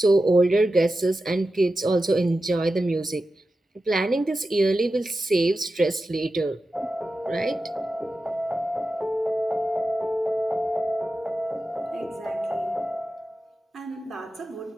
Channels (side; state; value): both; normal; correlation 0.92